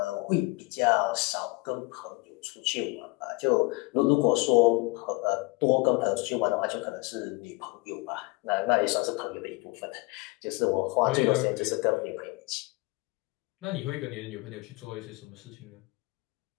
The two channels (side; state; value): right; quieter; 25.2 dB